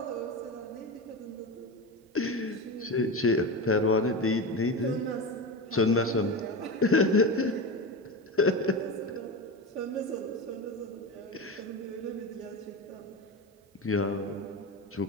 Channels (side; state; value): both; normal; correlation 0.22